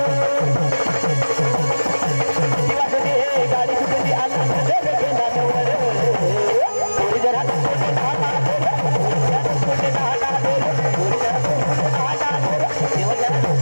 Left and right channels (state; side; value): inverted; both; correlation -1.00